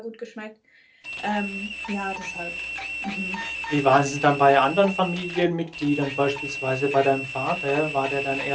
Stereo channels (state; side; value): identical; both; correlation 1.00